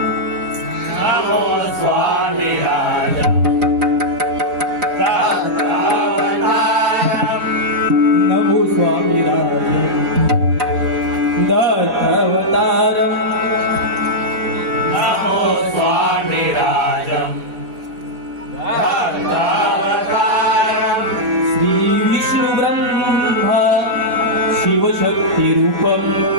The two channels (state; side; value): late; left; 4.5 ms